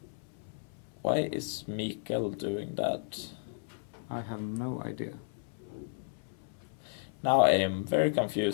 Why is Mikael doing that? I have no idea. Now I am very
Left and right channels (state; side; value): silent; right; 55 dB below the other